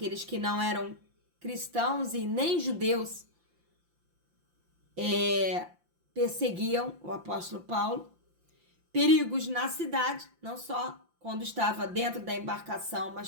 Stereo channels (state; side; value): late; left; 5.8 ms